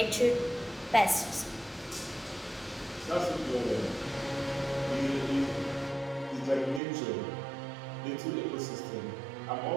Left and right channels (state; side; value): drops out; left; at 6.8 s